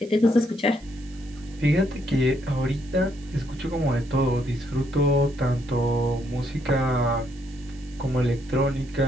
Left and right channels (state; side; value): noise; right; hiss, 25 dB below the sound